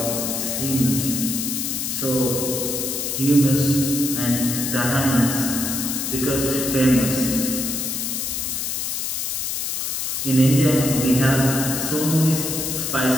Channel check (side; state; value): left; noise; hiss, 2 dB below the sound